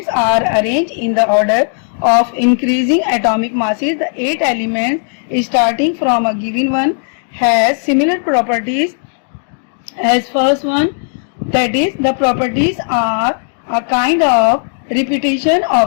are arranged in the order of increasing atomic masses, the 8 elements starting from a given one has similar properties as first one. That is, the properties are a kind of repetition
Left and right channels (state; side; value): silent; right; 67 dB below the other